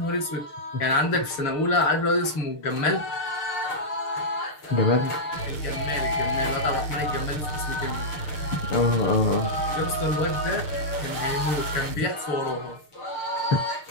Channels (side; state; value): right; late; 6.6 ms